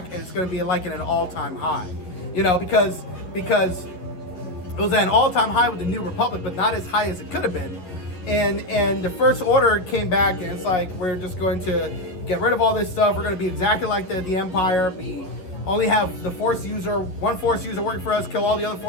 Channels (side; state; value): right; late; 11 ms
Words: and it's going to be like in an all-time high. You know, because it was at an all-time high with the New Republic, but not as high as it could have been. And the First Order came back, and it's like, we're just going to get rid of all this stuff. We're gonna be exactly like the Empire. Only have the one Force user working for us, kill all the other